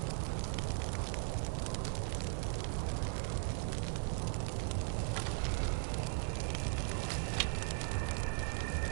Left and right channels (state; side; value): silent; left; 52 dB below the other